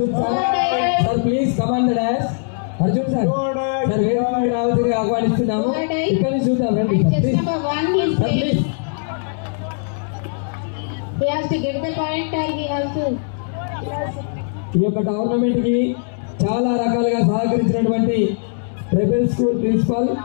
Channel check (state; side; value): silent; right; digital silence